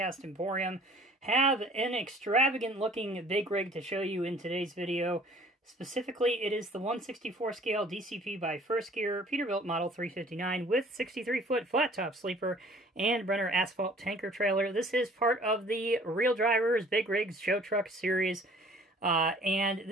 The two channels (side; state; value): both; normal; correlation 0.53